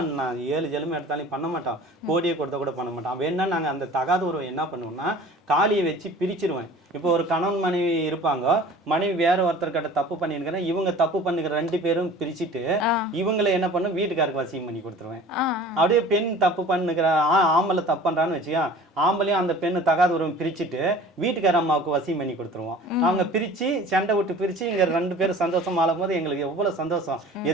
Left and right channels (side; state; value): both; normal; correlation 0.44